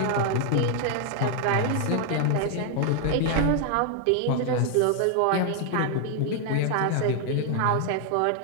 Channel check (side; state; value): both; different; correlation 0.00